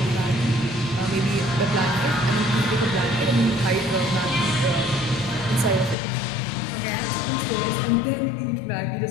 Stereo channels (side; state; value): right; drops out; at 6.0 s